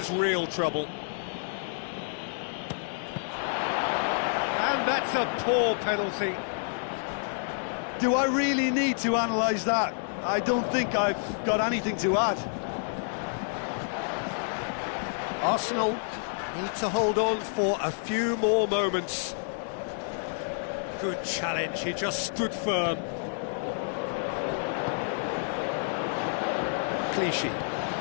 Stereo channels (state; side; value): silent; right; digital silence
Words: real trouble. And that's a poor penalty. Do I really need to analyse that? I don't think I've got anything to add. Arsenal need to hold on for a few more moments. Good challenge, he just stood firm. Clichy.